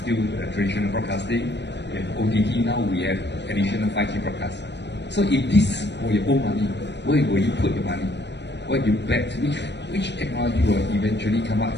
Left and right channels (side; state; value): right; late; 0.51 ms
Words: traditional broadcasting, we have OTT, now we have additional 5G broadcast. So if this were your own money, where will you put your money? Where do you bet? Which technology will eventually come out